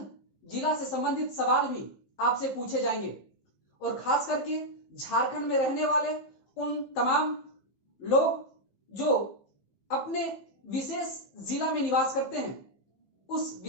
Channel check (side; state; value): right; late; 15 ms